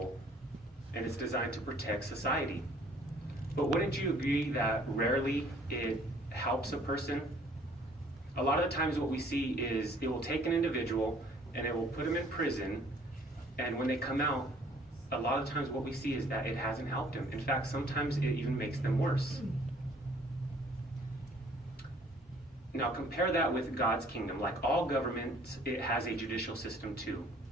and it's designed to protect society. But wouldn't you agree that rarely it helps a person? A lot of the times what we see is it will take an individual and it will put them in prison, and when they come out, a lot of times what we see is that it hasn't helped them. In fact, sometimes it even makes them worse. Now compare that with God's kingdom. Like all governments, it has a judicial system too.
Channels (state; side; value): normal; both; correlation 0.57